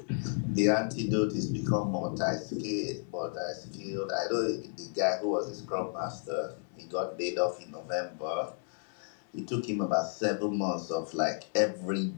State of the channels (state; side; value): silent; right; 56 dB below the other